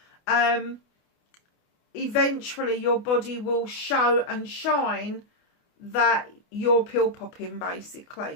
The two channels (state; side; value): late; right; 28 ms